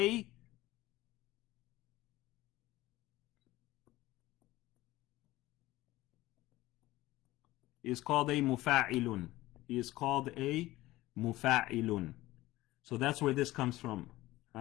mufa'ilun. He is called a mufa'ilun. So that's where this comes from.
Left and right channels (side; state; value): right; quieter; 17.5 dB